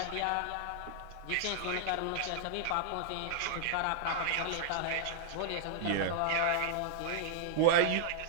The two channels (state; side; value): different; both; correlation -0.01